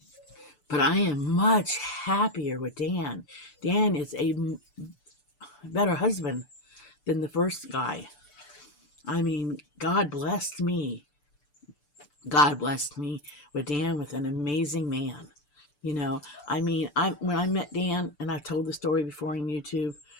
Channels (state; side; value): late; right; 6.8 ms